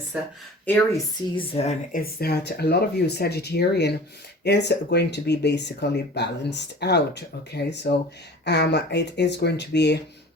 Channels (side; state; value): both; normal; correlation 0.42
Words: Aries season is that a lot of you Sagittarian is going to be basically balanced out. Okay, so it is going to be